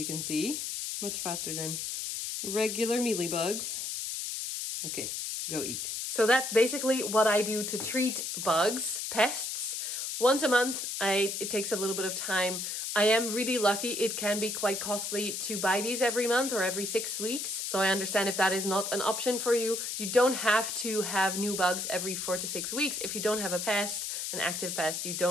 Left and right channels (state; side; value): noise; left; hiss, 3 dB below the sound